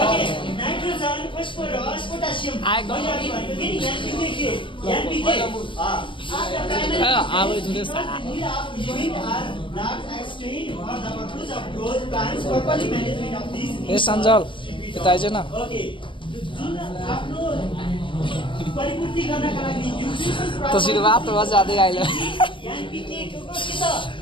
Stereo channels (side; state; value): right; late; 0.24 ms